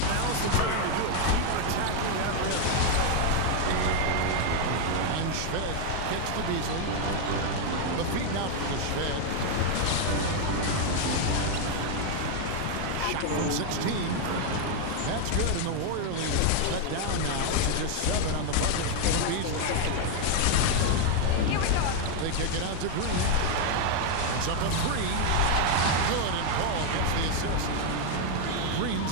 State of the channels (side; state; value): both; different; correlation 0.01